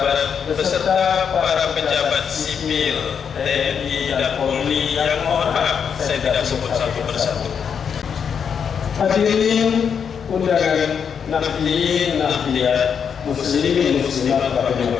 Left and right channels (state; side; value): quieter; right; 7.1 dB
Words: beserta para pejabat sipil, TNI dan Polri yang mohon maaf saya tidak sebut satu persatu. Hadirin undangan, nahdien, nahdiyat, muslimin muslimat